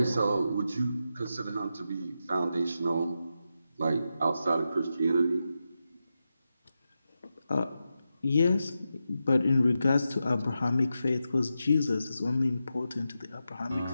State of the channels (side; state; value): both; inverted; correlation -0.88